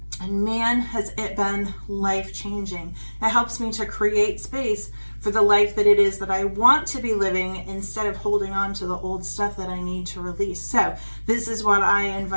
And man, has it been life-changing. It helps me to create space for the life that it is that I want to be living, instead of holding on to the old stuff that I need to release. So this is what I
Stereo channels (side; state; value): both; inverted; correlation -1.00